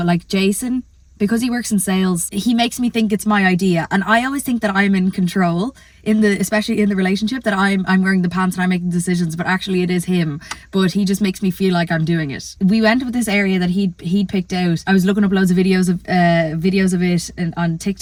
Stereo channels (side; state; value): both; identical; correlation 1.00